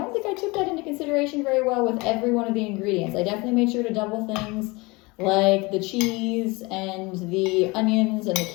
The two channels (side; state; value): right; quieter; 24.9 dB